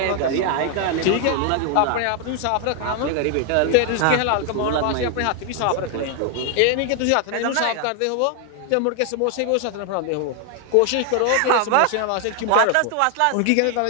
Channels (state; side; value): different; both; correlation 0.00